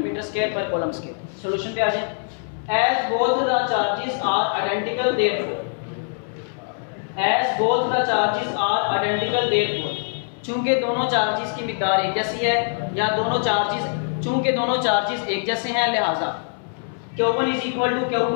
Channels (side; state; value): right; silent; digital silence